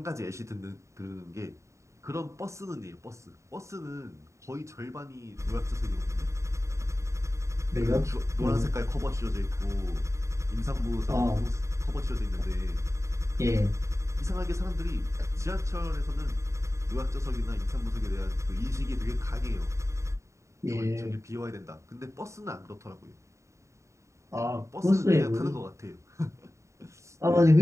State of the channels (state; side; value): late; left; 0.14 ms